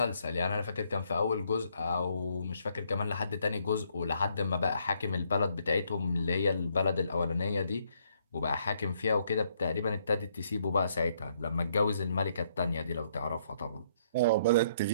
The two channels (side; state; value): both; inverted; correlation -0.70